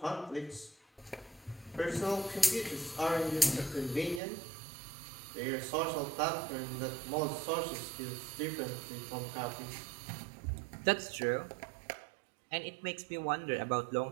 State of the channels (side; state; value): left; drops out; at 4.2 s